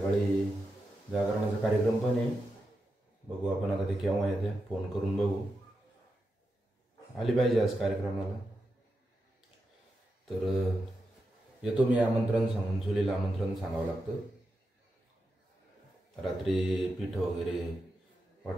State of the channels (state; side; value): normal; both; correlation 0.87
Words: जागरणाचा कार्यक्रम पण आहे. बघू आपण आता ते केव्हा येत्या. फोन करून बघू. आली पाहिजे आज कार्यक्रमाला. तर येतो मी आमंत्रण सांगून. चुलीला आमंत्रण सांगावं लागतं. रात्री पीठ वगैरे